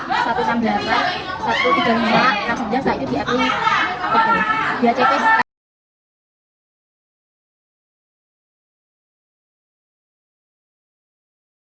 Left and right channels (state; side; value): identical; both; correlation 1.00